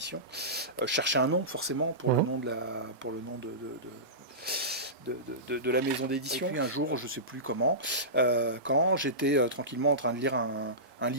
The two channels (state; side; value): normal; both; correlation -0.20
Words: je cherchais un nom forcément pour le nom de la maison d'édition. Et puis un jour, je ne sais plus comment, quand j'étais tranquillement en train de lire un